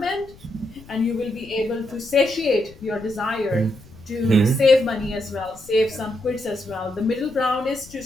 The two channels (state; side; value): noise; left; rumble, 22 dB below the sound